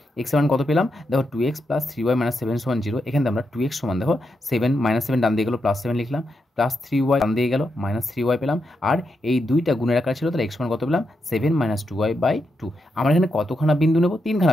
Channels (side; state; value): both; normal; correlation 0.84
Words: এক্সের মান কত পেলাম দেখো, 2x + 3y - 7 = 0। এখানে আমরা 2x সমান দেখো 7 - 7 ডান দিয়ে গেলো +7 লিখলাম, +3y ডান দিয়ে গেল -3y পেলাম, আর এই দুইটা গুণের আকার ছিল তাহলে x সমান কত পেলাম 7 - 2y/2। আমরা এখানে কতখানা বিন্দু নেব,